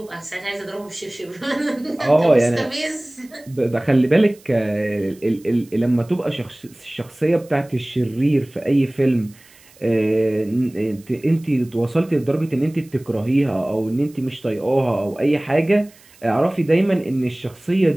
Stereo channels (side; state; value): right; noise; hiss, 27 dB below the sound